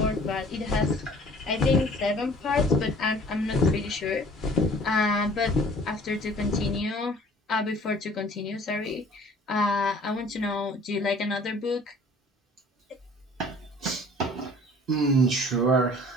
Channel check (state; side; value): normal; both; correlation 0.51